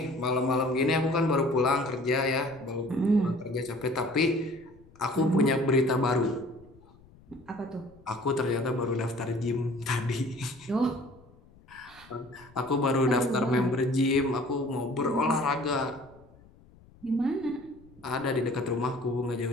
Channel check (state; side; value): noise; left; rumble, 26 dB below the sound